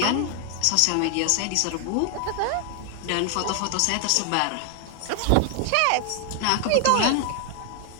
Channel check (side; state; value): both; different; correlation 0.00